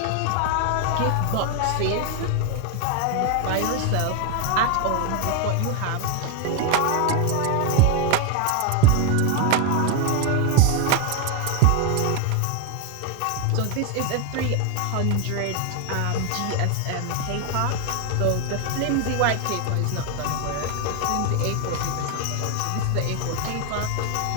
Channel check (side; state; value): both; different; correlation 0.01